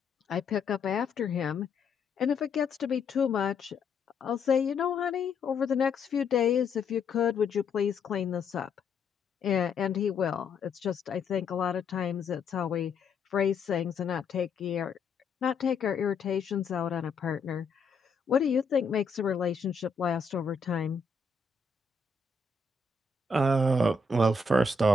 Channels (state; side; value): quieter; right; 4.2 dB